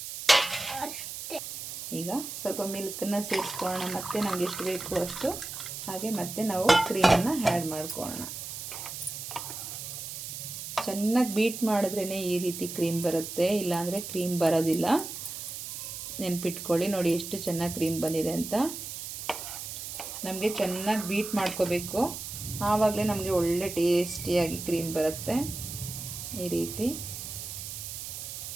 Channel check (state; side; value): noise; right; hiss, 8 dB below the sound